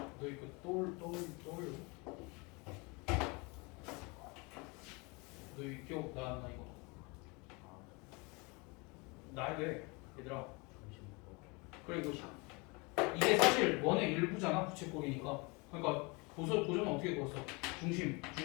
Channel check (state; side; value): quieter; right; 28.3 dB